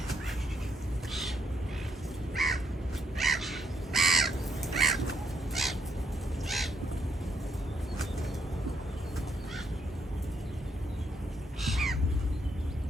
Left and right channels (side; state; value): both; normal; correlation 0.74